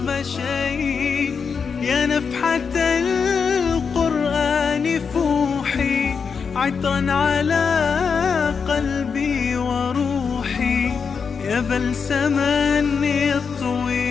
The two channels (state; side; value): quieter; right; 5.9 dB